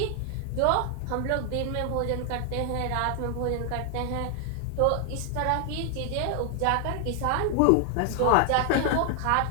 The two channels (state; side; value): different; both; correlation 0.00